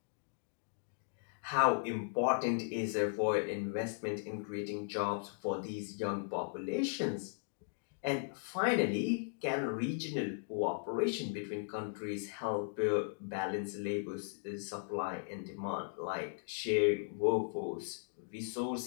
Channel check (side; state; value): right; silent; digital silence